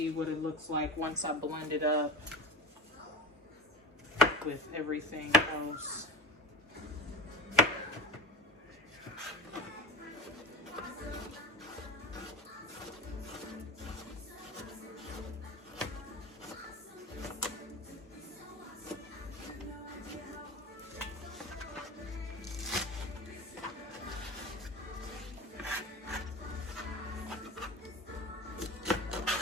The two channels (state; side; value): normal; both; correlation 0.29